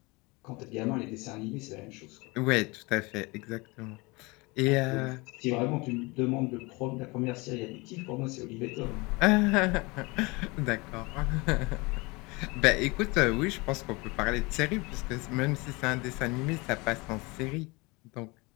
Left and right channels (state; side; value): quieter; right; 25.6 dB